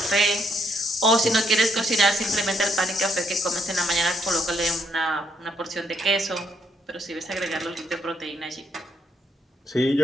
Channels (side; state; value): both; normal; correlation 0.74